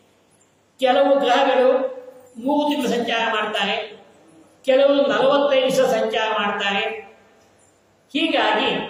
ಕೆಲವು ಗ್ರಹಗಳು 3 ತಿಂಗಳು ಸಂಚಾರ ಮಾಡ್ತಾರೆ, ಕೆಲವು 45 ದಿವಸ ಸಂಚಾರ ಮಾಡ್ತಾರೆ. ಹೀಗಾಗಿ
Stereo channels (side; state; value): both; identical; correlation 1.00